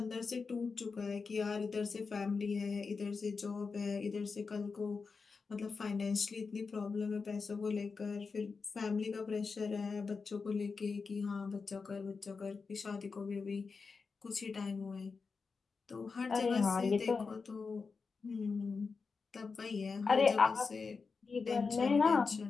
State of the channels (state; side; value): quieter; right; 4.8 dB